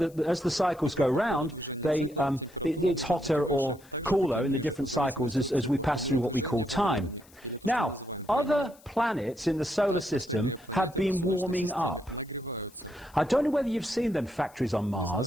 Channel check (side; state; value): left; noise; hiss, 26 dB below the sound